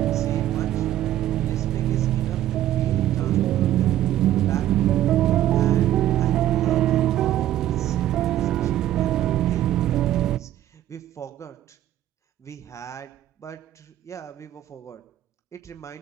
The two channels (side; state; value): left; quieter; 12.9 dB